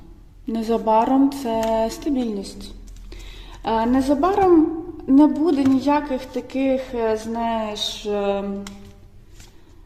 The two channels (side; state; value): both; identical; correlation 1.00